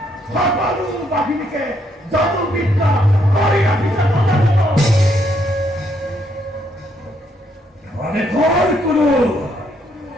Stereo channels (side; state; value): both; normal; correlation 0.73